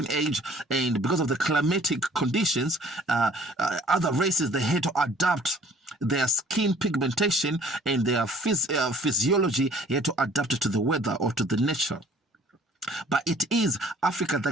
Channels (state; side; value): normal; both; correlation 0.54